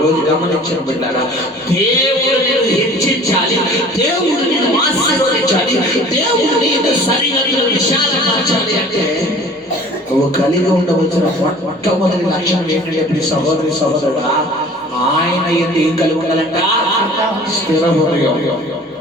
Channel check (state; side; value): normal; both; correlation 0.47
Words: గమనించిన బిడ్డలారా, దేవుడు నేను హెచ్చించాలి, దేవుడు నేను ఆశీర్వదించాలి, దేవుడు నేను సరిహద్దులు విశాలపరచాలి అంటే నువ్వు కలిగి ఉండవలసిన మొట్టమొదటి లక్షణం ఏంటంటే ఇప్పుడు సహోదరి సహోదరుడా, ఆయన ఏం కలిగి ఉండాలంట? స్థిర హృదయం,